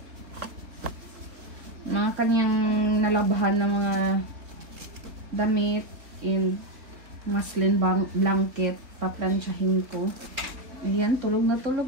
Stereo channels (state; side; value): late; left; 3.6 ms